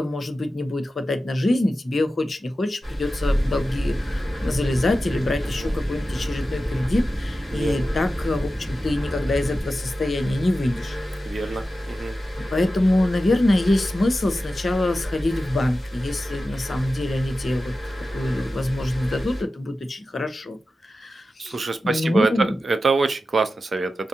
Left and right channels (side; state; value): both; normal; correlation 0.93